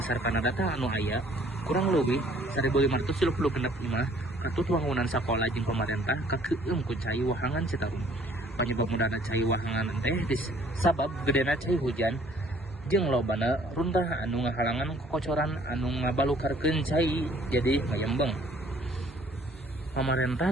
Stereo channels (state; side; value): normal; both; correlation 0.58